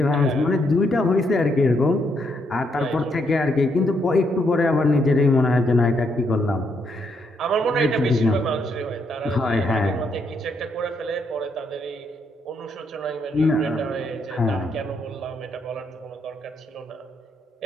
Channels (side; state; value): both; normal; correlation 0.76